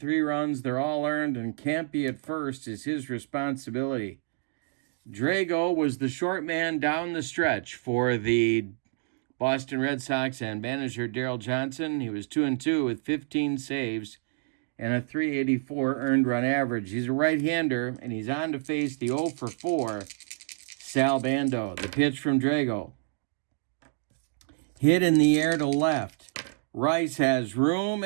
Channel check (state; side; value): silent; left; digital silence